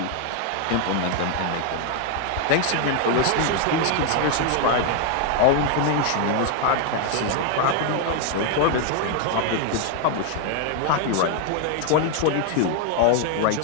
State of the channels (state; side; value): different; both; correlation 0.00